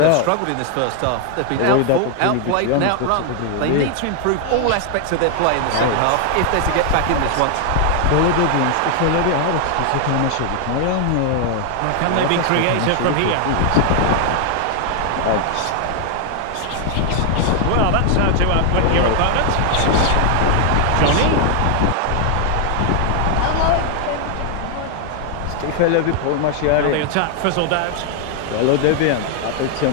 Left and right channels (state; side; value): different; both; correlation 0.00